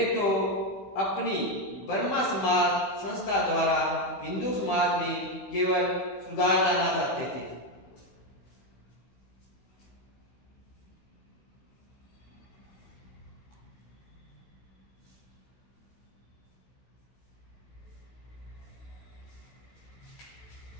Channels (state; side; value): late; right; 15 ms